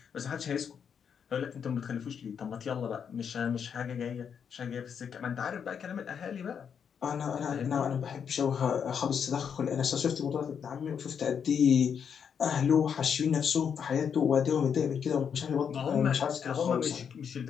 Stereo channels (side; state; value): right; quieter; 7.3 dB